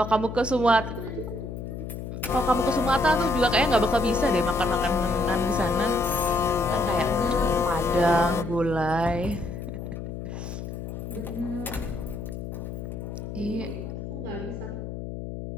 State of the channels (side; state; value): left; noise; hum, 7 dB below the sound